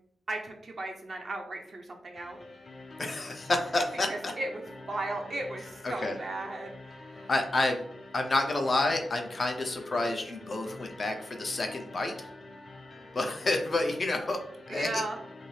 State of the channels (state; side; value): normal; both; correlation 0.89